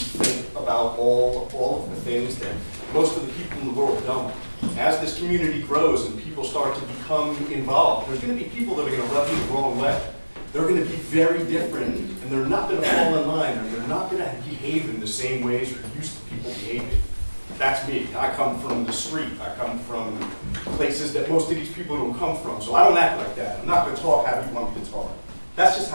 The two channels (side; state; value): both; inverted; correlation -1.00